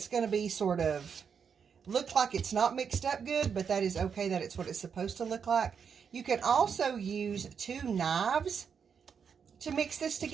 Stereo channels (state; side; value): quieter; left; 6.7 dB